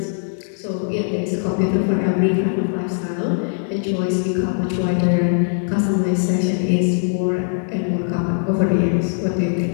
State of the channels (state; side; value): silent; right; digital silence